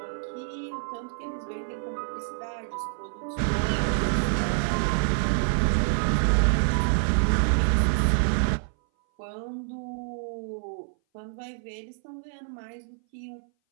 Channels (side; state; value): left; silent; 58 dB below the other